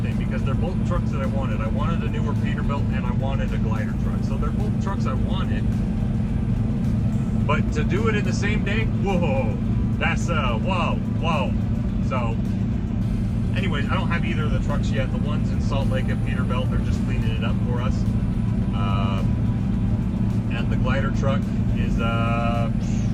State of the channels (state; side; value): identical; both; correlation 1.00